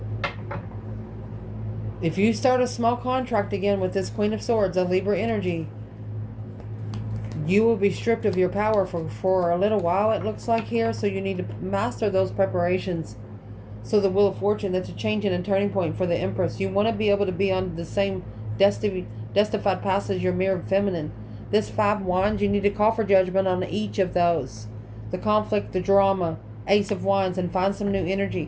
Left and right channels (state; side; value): identical; both; correlation 1.00